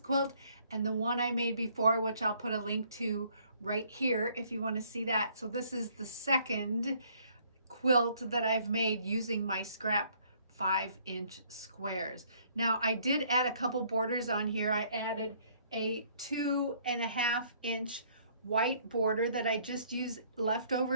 and the one I made before, which I'll put a link to right here if you want to see that. So this is the second quilt that I've made using my scrap 5-inch squares. Now, I did add a couple borders on here. I added a 2.5-inch white border that I just used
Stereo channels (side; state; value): both; inverted; correlation -0.63